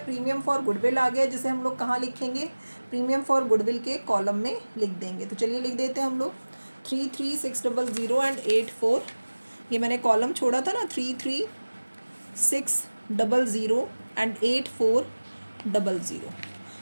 फॉर गुडविल आ गया, जिसे हम लोग कहाँ लिखेंगे? प्रीमियम फॉर गुडविल के कॉलम में लिख देंगे। तो चलिए लिख देते हैं हम लोग 33,600 एंड 84। ये मैंने कॉलम छोड़ा था ना, 33,600 एंड 8400।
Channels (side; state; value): both; inverted; correlation -1.00